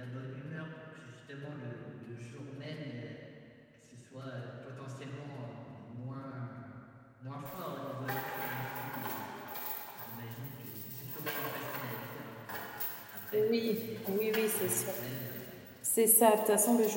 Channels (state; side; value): identical; both; correlation 1.00